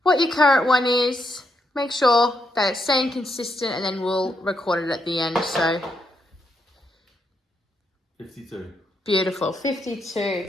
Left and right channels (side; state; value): both; normal; correlation 0.79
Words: what your current one is, make sure that it's staying consistent, and then we'll record it at the end. So 52. Beautiful.